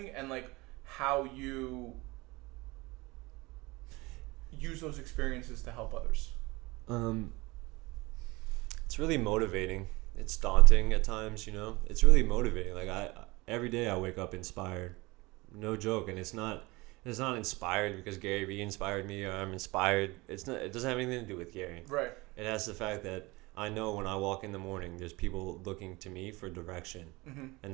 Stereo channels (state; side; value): quieter; left; 23.1 dB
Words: and like how you use those experiences to help others. It's really motivating. It's daunting at times, you know. It's really motivating. Like every day I wake up inspired. No joke, and it's not inspired because Gary Vee inspired me or I'm inspired. It doesn't have anything to do with Gary. Right. It has the fact that I know when I walk in the morning, there's people looking to me for direction, mm-hmm. and